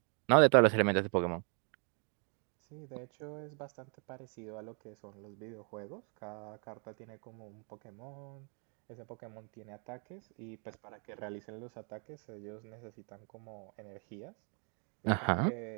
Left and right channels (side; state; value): left; quieter; 38.5 dB